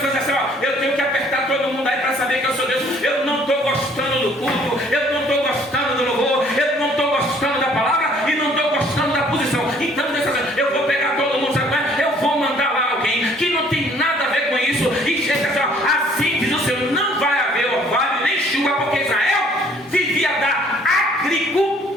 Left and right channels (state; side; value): normal; both; correlation 0.59